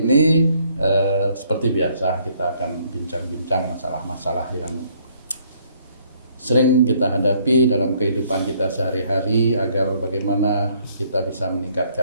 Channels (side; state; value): both; inverted; correlation -0.66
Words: seperti biasa kita akan bincang-bincang masalah-masalah yang sering kita hadapi dalam kehidupan kita sehari-hari agar bagaimana kita bisa